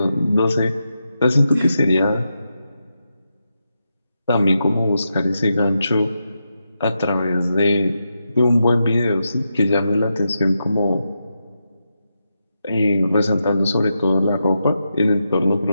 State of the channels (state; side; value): inverted; both; correlation -0.87